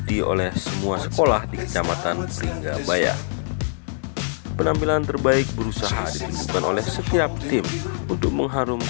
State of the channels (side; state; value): right; silent; digital silence